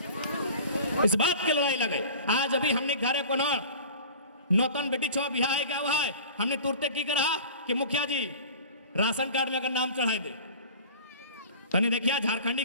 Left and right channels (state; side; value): inverted; both; correlation -0.40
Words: इस बात के लड़ाई लगे। आज अभी हमने घरे को नौतन बेटी छो बिहार है क्या हुआ है, हमने तुरते की करा कि मुखिया जी राशन कार्ड में अगर नाम चढ़ाई दे, तनी देखिया